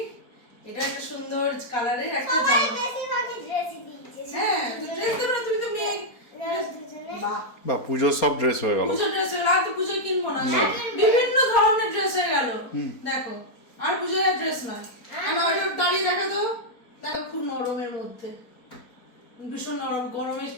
এটা একটা সুন্দর কালারের একটা সবাই জামা। বেশিরভাগই ড্রেসই দিয়েছে। হ্যাঁ, তো ড্রেস দেবে না, তুমি তো মেয়ে। দুজনে বাহ, বা পুজোর সব ড্রেস হয়ে গেল। পুজো ড্রেস হয়ে গেল, আর তো পুজোয় কিনবো না, না। বিভিন্ন ধরনের ড্রেস হয়ে গেল। দেখো আর পুজোয় ড্রেস নয়, আমার ওইটা দাঁড়িয়ে দেখা তো, দেখো খুব নরমের মধ্যে, ভীষণ নরম, গরমে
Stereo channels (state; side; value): late; right; 4.3 ms